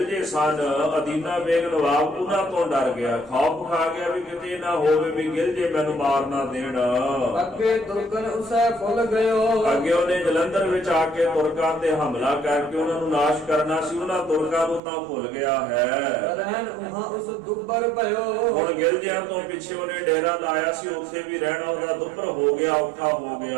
ਸਨ ਅਦੀਨਾ ਬੇਗ ਨਵਾਬ ਉਹਨਾਂ ਤੋਂ ਡਰ ਗਿਆ, ਖੌਫ ਖਾ ਗਿਆ ਵੀ ਕਿਤੇ ਨਾ ਹੋਵੇ ਵੀ ਗਿਰਜੇ ਮੈਨੂੰ ਮਾਰ ਨਾ ਦੇਣ। ਅੱਗੇ ਤੁਰਕਨ ਉਸੈ ਫੁੱਲ ਗਇਓ ਅੱਗੇ ਉਹਨੇ ਜਲੰਧਰ ਵਿੱਚ ਆ ਕੇ ਤੁਰਕਾਂ ਤੇ ਹਮਲਾ ਕਰਕੇ ਉਹਨਾਂ ਨੂੰ ਨਾਸ਼ ਕਰਨਾ ਸੀ। ਉਹਨਾਂ ਤੁਰਕਾਂ ਨੂੰ ਤਾਂ ਭੁੱਲ ਗਿਆ ਹੈ। ਰਹਿਣ ਉਹਾਂ ਉਸ ਦੁੱਬਰ ਭਇਓ ਹੁਣ ਗਿਰਜਿਆਂ ਤੋਂ ਪਿੱਛੇ ਉਹਨੇ ਡੇਰਾ ਲਾਇਆ ਸੀ, ਉੱਥੇ ਵੀ ਰਹਿਣਾ ਉਹਦਾ ਦੁੱਭਰ ਹੋ ਗਿਆ, ਔਖਾ ਹੋ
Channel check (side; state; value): left; drops out; at 14.8 s